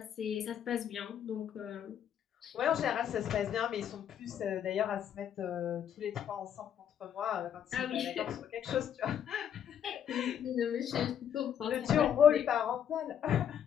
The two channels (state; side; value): quieter; right; 9.2 dB